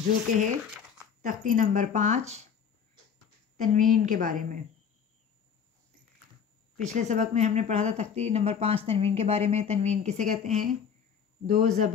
جو کہ ہے تختی نمبر 5 تنوین کے بارے میں۔ پچھلے سبق میں ہم نے پڑھا تھا تختی نمبر 5 تنوین کے بارے میں۔ تنوین کسے کہتے ہیں؟ 2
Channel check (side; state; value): right; quieter; 7.2 dB